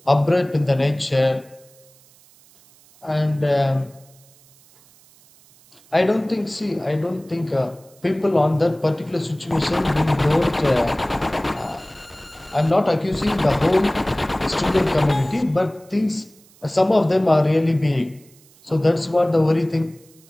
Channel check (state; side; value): noise; right; hiss, 28 dB below the sound